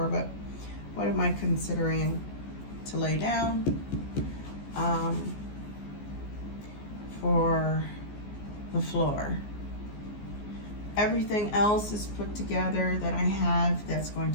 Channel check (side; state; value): right; late; 14 ms